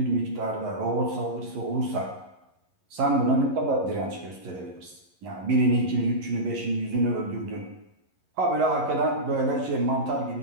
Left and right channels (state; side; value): late; left; 11 ms